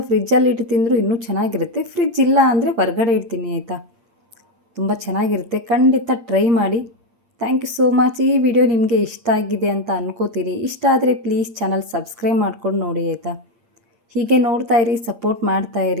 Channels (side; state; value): left; late; 8.7 ms